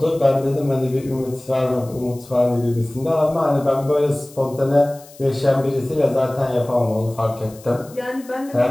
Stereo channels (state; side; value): noise; left; hiss, 23 dB below the sound